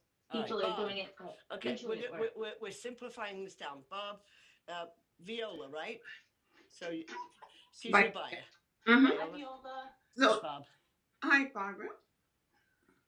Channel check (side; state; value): both; identical; correlation 1.00